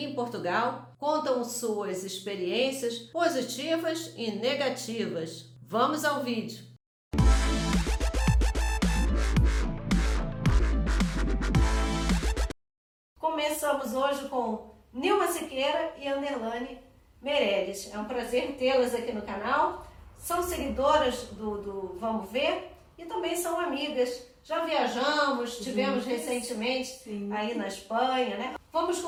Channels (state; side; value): identical; both; correlation 1.00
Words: em Portugal contam suas experiências positivas e negativas. Vamos ao vídeo! Começamos hoje com Nilma Siqueira e Anderlane Meirelles. É um prazer tê-las aqui no canal. São seguidoras do Vamos Ver e também são amigas. Já viajamos, tivemos recentemente aí na Espanha, né? Vamos